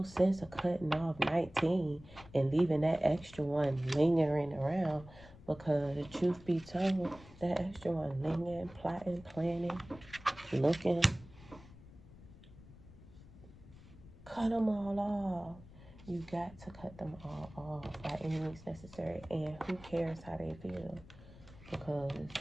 sense of cutting off 19 and leaving that extra one lingering around, because truth be told, that extra one lingering, plotting, planning, looking, cut them all off. You got to cut them all off by any means necessary. And who cares how they feel? Because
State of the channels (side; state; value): left; noise; rumble, 19 dB below the sound